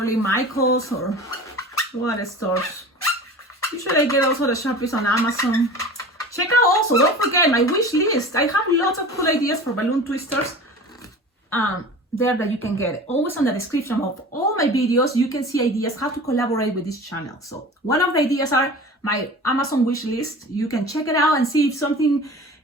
Michael's or what stores. Usually I get also the Sharpies on Amazon. Check out also, don't forget my wish list. I have lots of cool ideas for balloon twisters there that you can get. Always on the description of all my videos, you can see ideas how to collaborate with this channel. So one of the ideas are my Amazon wish list. You can check it out and see if something,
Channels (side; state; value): both; normal; correlation 0.38